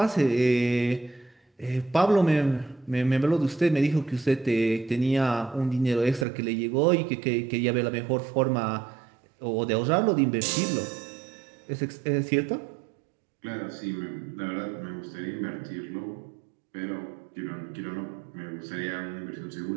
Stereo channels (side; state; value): left; drops out; at 6.2 s